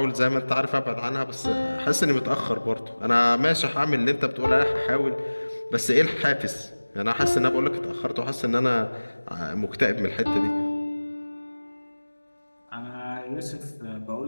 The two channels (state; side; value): inverted; both; correlation -1.00